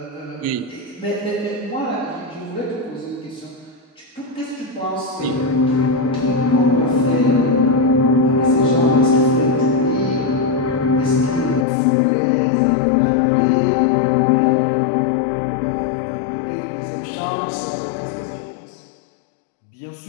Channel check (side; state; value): right; drops out; at 11.7 s